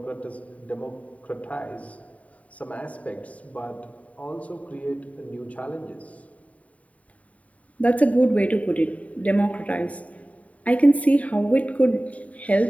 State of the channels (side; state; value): right; late; 0.068 ms